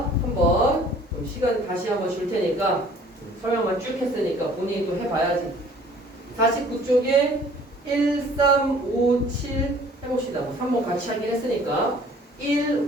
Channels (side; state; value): both; normal; correlation 0.53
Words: 한번 시간 다시 한번 줄 테니까 설명만 쭉 했으니까 본인이 또 해봐야지. 49쪽에 1, 3, 5, 7 해봅시다. 뭐 3번 같이 하긴 했으니까 1,